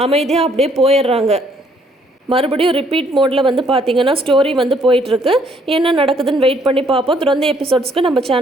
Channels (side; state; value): both; normal; correlation 0.66